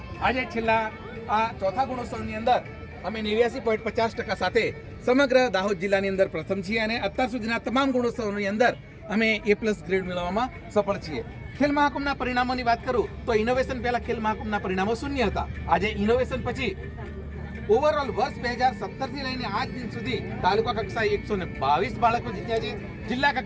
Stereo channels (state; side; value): identical; both; correlation 1.00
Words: આજે છેલ્લા આ ચોથા ગુણોત્સવની અંદર અમે 89.50% સાથે સમગ્ર દાહોદ જિલ્લાની અંદર પ્રથમ છીએ અને અત્યાર સુધીના તમામ ગુણોત્સવની અંદર અમે A+ ગ્રેડ મેળવવામાં સફળ છીએ. ખેલ મહાકુંભના પરિણામોની વાત કરું તો ઇનોવેશન પહેલા ખેલ મહાકુંભના પરિણામો 0 હતા. આજે ઇનોવેશન પછી ઓવરઓલ વર્ષ 2017થી લઈને આજ દિન સુધી તાલુકા કક્ષાએ 122 બાળકો જીત્યા છે. જિલ્લા